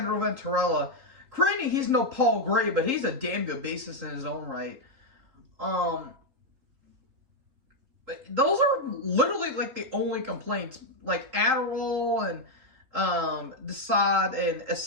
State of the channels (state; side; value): late; left; 3.8 ms